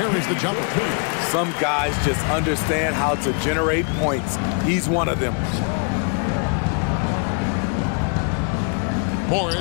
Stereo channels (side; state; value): right; quieter; 39.7 dB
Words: the jumper. Some guys just understand how to generate points. He's one of them.